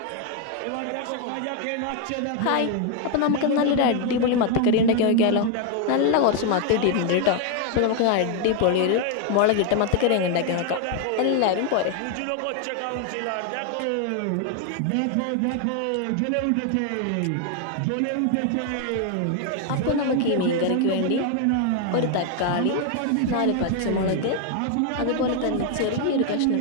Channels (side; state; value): both; different; correlation 0.01